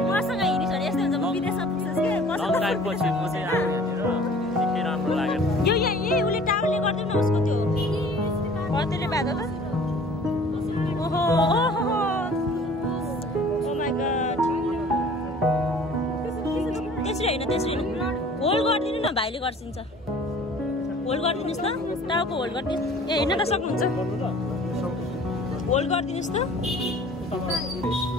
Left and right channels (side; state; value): both; normal; correlation 0.49